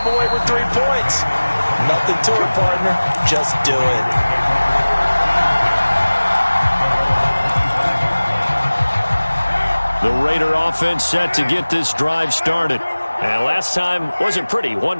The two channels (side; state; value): both; inverted; correlation -1.00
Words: away with 3 points. Nothing to it, partner. Just do it. The Raider offense set to get this drive started. And last time wasn't pretty.